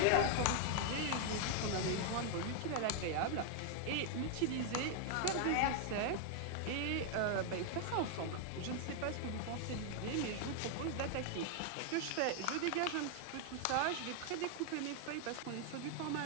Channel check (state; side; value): different; both; correlation 0.00